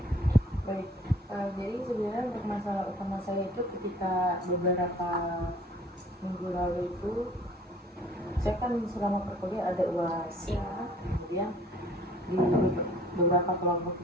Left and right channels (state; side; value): normal; both; correlation 0.54